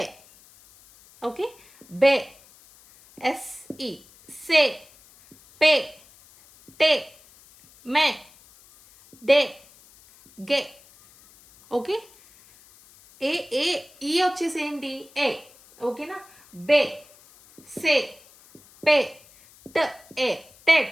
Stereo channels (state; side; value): noise; left; hiss, 26 dB below the sound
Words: ఓకే. బే, SE, से, पे, टे, मैं, डे, गे. ఓకే. ఈ వచ్చేసి ఏంటి? ఏ. ఓకేనా? బే, సే, పే, ట, ఏ, టెట్,